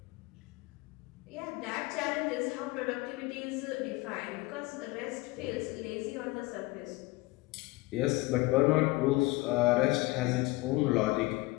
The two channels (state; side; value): quieter; right; 21.6 dB